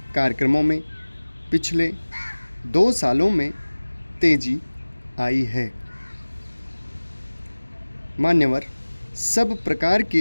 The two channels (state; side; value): inverted; both; correlation -1.00